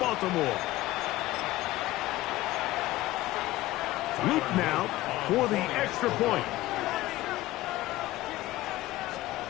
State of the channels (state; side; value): quieter; right; 17.0 dB